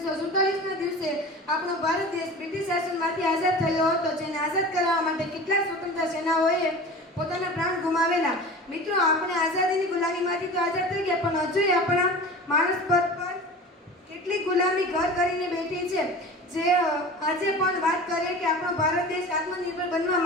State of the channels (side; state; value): both; normal; correlation 0.36